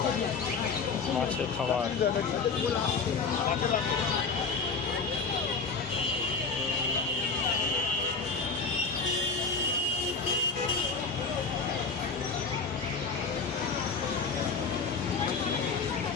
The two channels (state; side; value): quieter; right; 4.8 dB